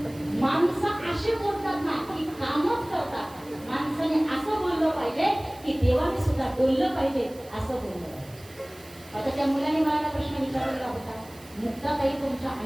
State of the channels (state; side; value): noise; right; hiss, 23 dB below the sound